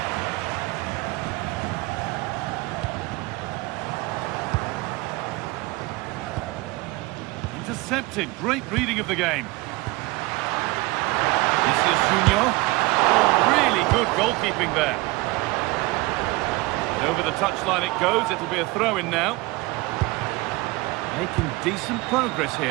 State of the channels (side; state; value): left; quieter; 22.2 dB